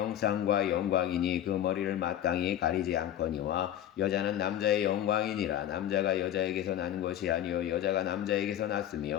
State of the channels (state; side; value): quieter; right; 11.4 dB